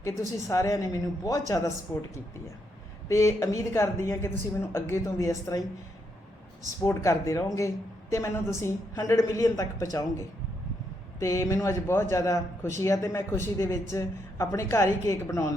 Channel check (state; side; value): normal; both; correlation 0.78